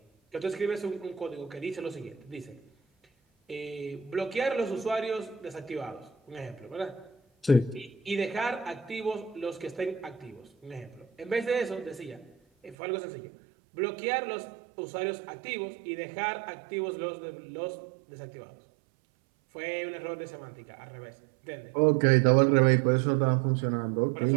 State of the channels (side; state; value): left; drops out; at 12.8 s